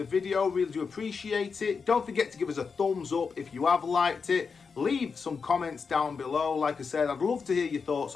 video. Really do appreciate it. Don't forget to give us a thumbs up if you have liked it. Leave some comments down below. Like I said, I'd love to hear your thoughts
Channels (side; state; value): right; quieter; 5.4 dB